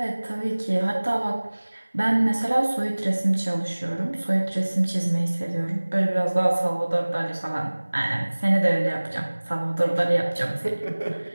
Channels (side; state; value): both; inverted; correlation -1.00